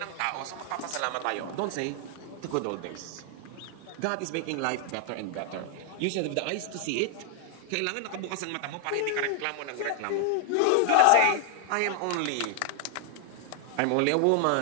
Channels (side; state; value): both; different; correlation 0.00